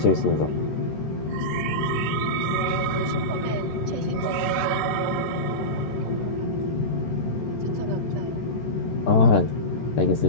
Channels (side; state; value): right; late; 14 ms